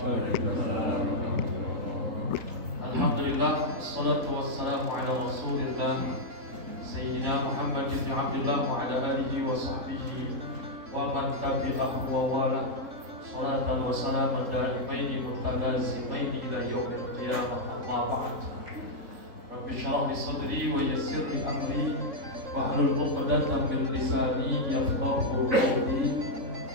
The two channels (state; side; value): late; left; 3.6 ms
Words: Alhamdulillah, wassalatu wassalamu ala rasulillah Sayyidina Muhammad ibn Abdullah wa ala alihi wa sahbihi wa man tabi'ahu wa wala. Salatan wa salaman da'imaini mutalazimaini ila yaumil qiyamah, amma ba'd. Rabbi shrah li sadri wa yassir li amri wahlul 'uqdatam min lisani yafqahu qawli.